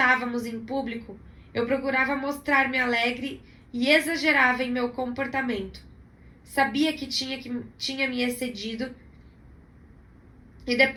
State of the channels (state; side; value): identical; both; correlation 1.00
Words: em público, eu procurava mostrar-me alegre e exagerava em meu comportamento. Sabia que tinha me excedido e